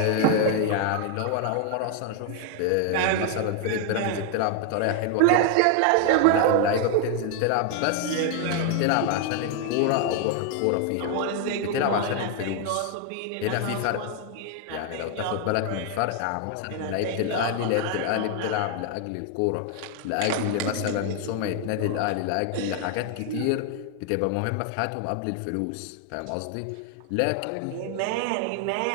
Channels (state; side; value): different; both; correlation 0.00